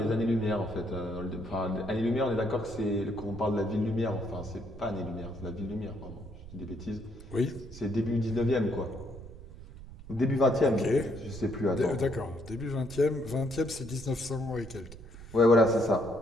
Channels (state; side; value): noise; right; rumble, 15 dB below the sound